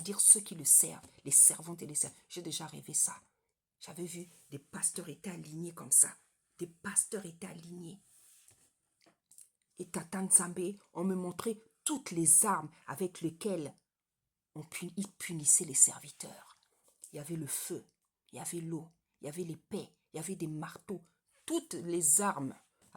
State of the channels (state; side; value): identical; both; correlation 1.00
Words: ceux qui le servent, les servantes et les servants. J'ai déjà rêvé ça. J'avais vu des pasteurs étaient alignés comme ça. Des pasteurs étaient alignés. Et Tata Nzambe, on me montrait toutes les armes avec lesquelles il punissait les serviteurs. Il y avait le feu, il y avait l'eau, il y avait l'épée, il y avait des marteaux. Toutes les armes